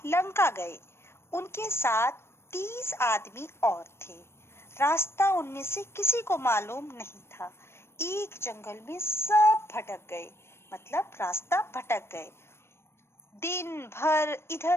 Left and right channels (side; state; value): right; late; 0.12 ms